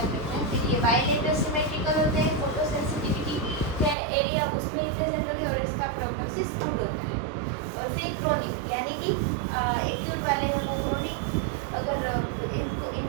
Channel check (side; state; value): left; drops out; at 4.0 s